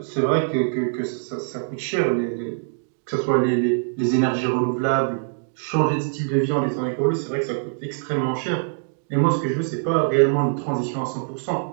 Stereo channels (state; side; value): silent; left; digital silence